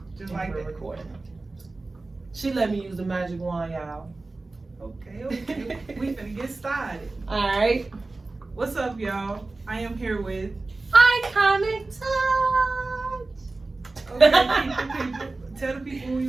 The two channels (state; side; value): quieter; left; 3.3 dB